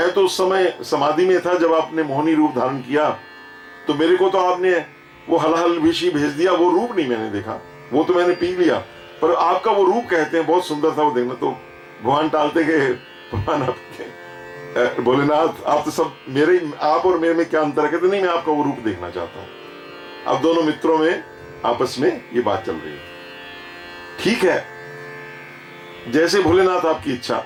तो उस समय समाधि में था जब आपने मोहिनी रूप धारण किया, तो मेरे को तो आपने वो हलहल विषी भेज दिया, वो रूप नहीं मैंने देखा, वो तो मैंने पी लिया, पर आपका वो रूप कहते हैं बहुत सुंदर था वो देखना। तो भगवान टालते गए, भगवान आपके भोलेनाथ, आप तो सब मेरे, आप और मेरे में क्या अंतर है? कहते नहीं, मैं आपका वो रूप देखना चाहता हूं। अब दोनों मित्रों में आपस में ये बात चल रही है। ठीक है, जैसे भोलेनाथ आपकी इच्छा।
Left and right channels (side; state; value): both; identical; correlation 1.00